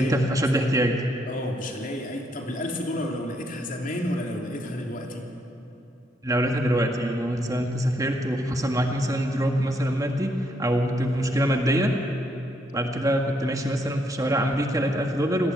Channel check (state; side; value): normal; both; correlation 0.74